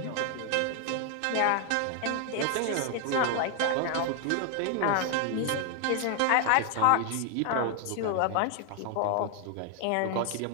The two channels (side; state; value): both; different; correlation 0.00